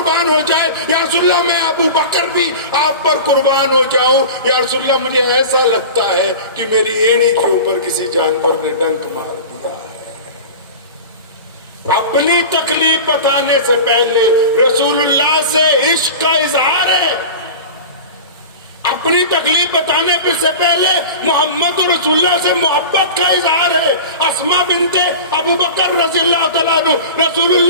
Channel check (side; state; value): both; inverted; correlation -0.33